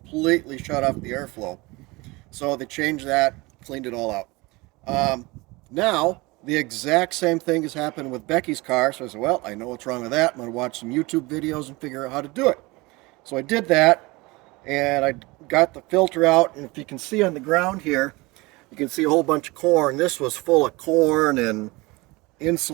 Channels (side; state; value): left; quieter; 23.4 dB